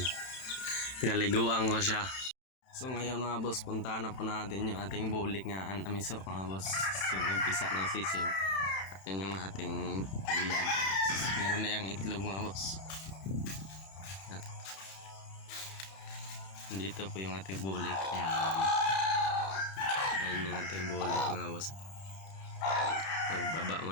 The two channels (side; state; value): right; late; 31 ms